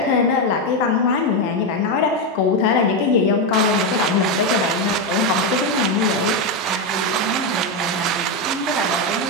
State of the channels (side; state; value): both; normal; correlation 0.08